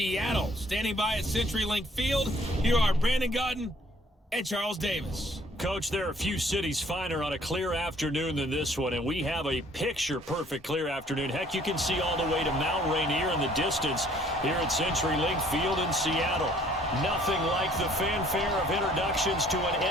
Standing by at CenturyLink Field, here are Brandon Gaudin and Charles Davis. Coach, there are a few cities finer on a clear afternoon than this one, and we have a picture-perfect clear afternoon. Heck, you can see all the way to Mount Rainier in the distance here at CenturyLink Field in Seattle. Nothing like the fanfare of introductions to an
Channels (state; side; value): normal; both; correlation 0.59